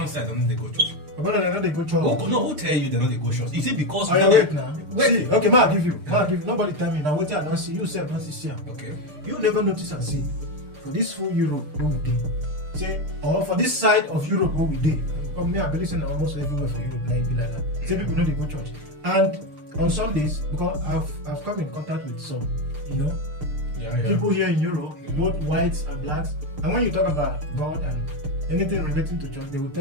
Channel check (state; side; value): late; left; 6.7 ms